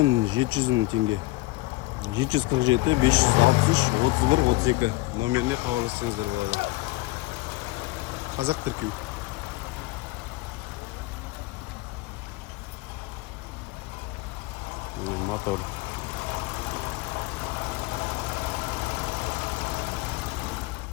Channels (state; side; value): quieter; right; 21.0 dB